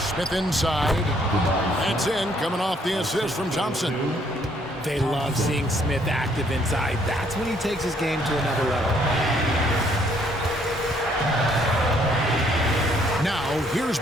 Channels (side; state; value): both; normal; correlation 0.66